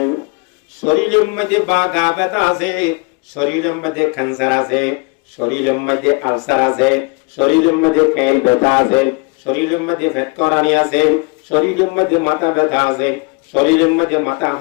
শরীরের মধ্যে বা গা ব্যথা আছে, শরীরের মধ্যে ক্যান্সার আছে, শরীরের মধ্যে আলসার আছে, শরীরের মধ্যে খেল ব্যথা আছে, শরীরের মধ্যে ফেট করানি আছে, শরীরের মধ্যে মাথা ব্যথা আছে, শরীরের মধ্যে মাথা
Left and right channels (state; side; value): quieter; right; 30.6 dB